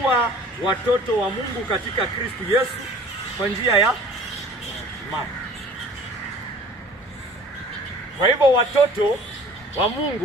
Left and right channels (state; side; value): normal; both; correlation 0.48